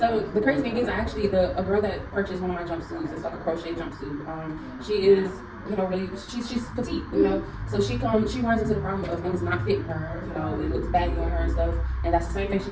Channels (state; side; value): identical; both; correlation 1.00